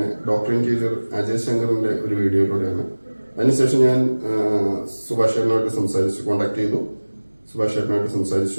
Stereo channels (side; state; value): both; inverted; correlation -1.00